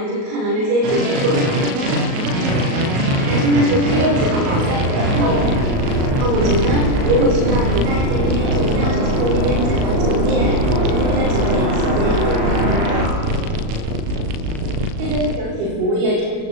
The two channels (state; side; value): late; left; 38 ms